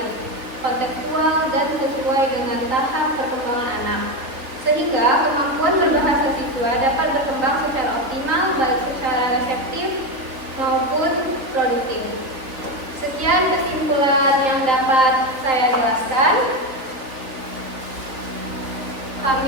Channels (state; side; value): late; left; 3.8 ms